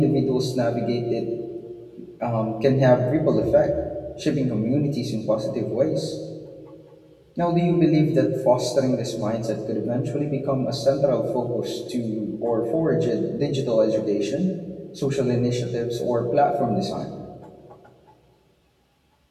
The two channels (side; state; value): both; identical; correlation 1.00